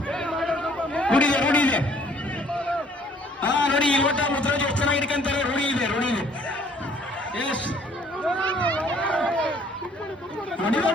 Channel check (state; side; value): normal; both; correlation 0.59